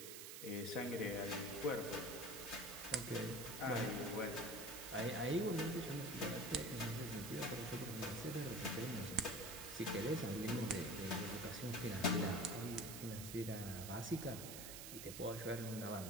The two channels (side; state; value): right; noise; hiss, 8 dB below the sound